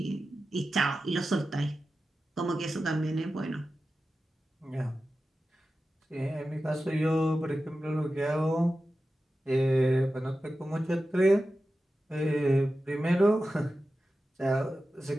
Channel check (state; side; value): normal; both; correlation 0.93